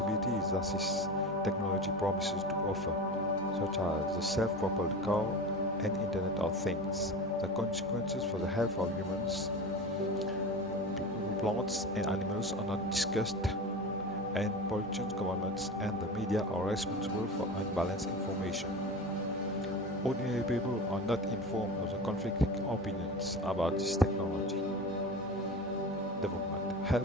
that this technology promises to offer, such as the self-propelled car and Internet of Things. The consequences for the health of humans, plants and animals are not discussed, and politicians, governments and the media are responsible for unbalanced information. Ordinary people are not informed of the conflicting opinions about this technology. Development.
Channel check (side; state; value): both; normal; correlation 0.29